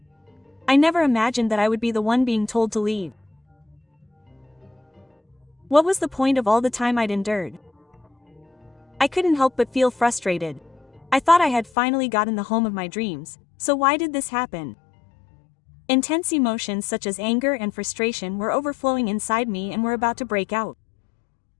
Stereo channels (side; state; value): right; drops out; at 11.7 s